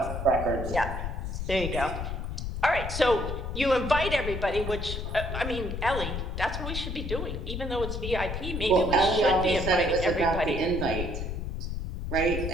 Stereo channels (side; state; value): left; noise; rumble, 4 dB below the sound